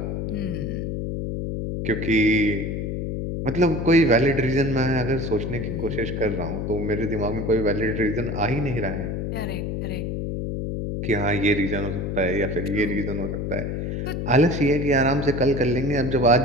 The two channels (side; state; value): left; noise; hum, 3 dB below the sound